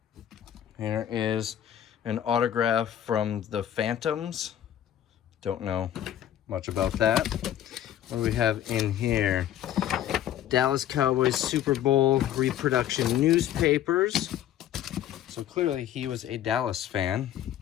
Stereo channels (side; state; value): right; quieter; 11.2 dB